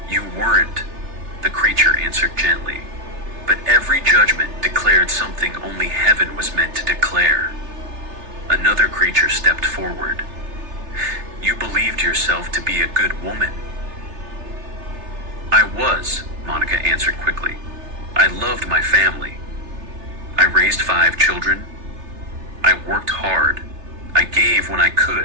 You weren't, the creature answered gently. But every judgment declared something only heaven was meant to declare. Another creature stepped forward. You believed yourself to be a good woman. I was, Monica answered quickly. I loved my family. I raised 5 children. I worked hard. I gave when I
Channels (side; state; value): left; late; 3.3 ms